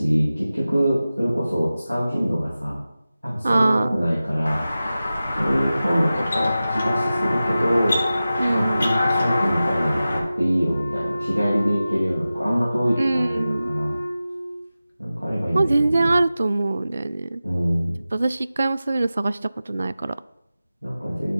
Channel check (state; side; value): inverted; both; correlation -0.95